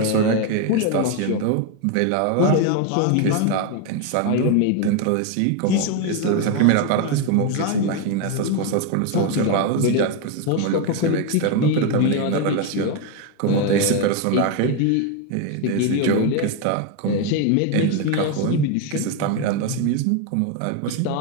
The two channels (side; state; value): both; different; correlation 0.02